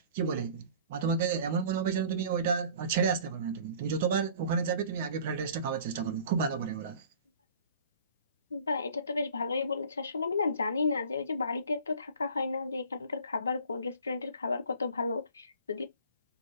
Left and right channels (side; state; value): both; inverted; correlation -0.47